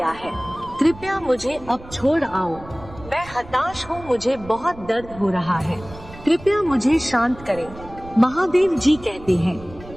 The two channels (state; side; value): noise; right; rumble, 18 dB below the sound